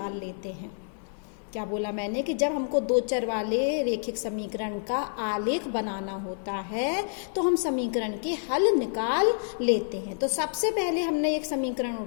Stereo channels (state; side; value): silent; right; digital silence